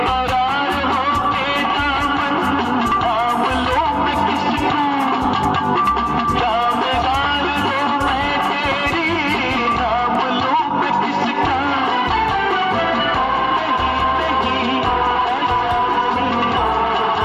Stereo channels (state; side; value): identical; both; correlation 1.00